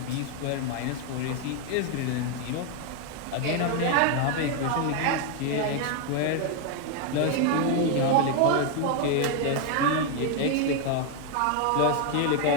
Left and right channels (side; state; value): both; different; correlation 0.01